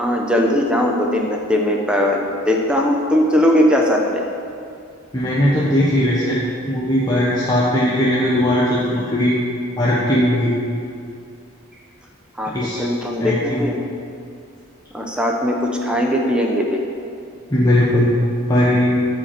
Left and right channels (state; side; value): normal; both; correlation 0.63